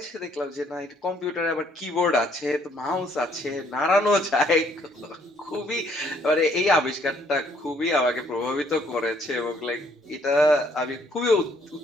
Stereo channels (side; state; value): both; normal; correlation 0.65